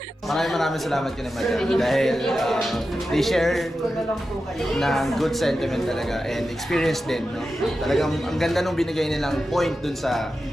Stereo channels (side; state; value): both; normal; correlation 0.91